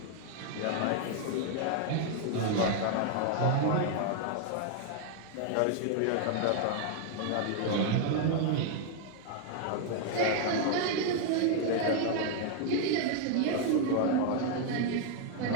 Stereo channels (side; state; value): both; different; correlation 0.00